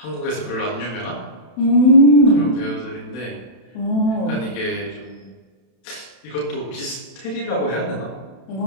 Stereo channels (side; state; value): right; late; 32 ms